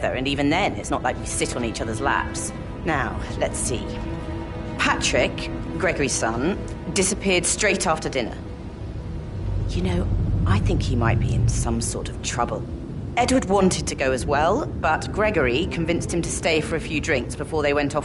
and even then, it's not like we sit on each other's laps. Now, let's see. Patrick, Gregory's son, disappeared straight after dinner. You know, I think he might be in some sort of trouble. Edward wanted to go as well, but Gregory convinced him to stay for a few drinks before they went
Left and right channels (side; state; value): both; identical; correlation 1.00